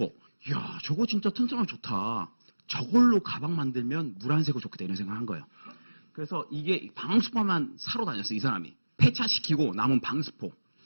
이야, 저거 진짜 튼튼하고 좋다. 저걸로 가방 만들면 물 안 새고 좋겠다 이런 생각을 한 거예요. 그래서 이게 방수포만 사러 다녔어요. 이 사람이. 폐차시키고 남은 방수포.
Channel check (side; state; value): both; inverted; correlation -1.00